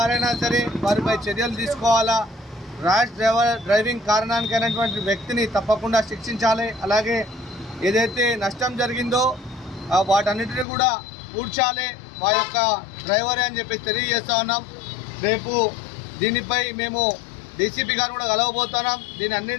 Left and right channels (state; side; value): drops out; right; at 10.7 s